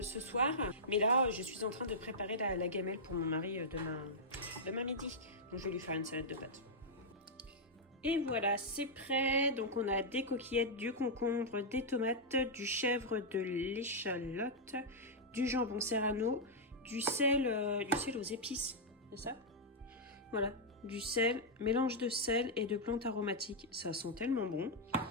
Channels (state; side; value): normal; both; correlation -0.07